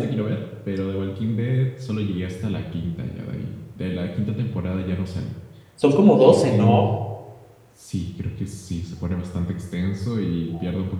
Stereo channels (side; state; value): both; identical; correlation 1.00